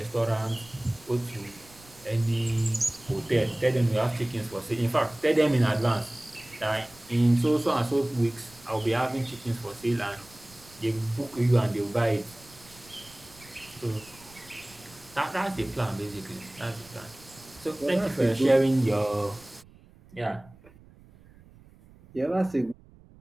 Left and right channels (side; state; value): right; noise; rumble, 24 dB below the sound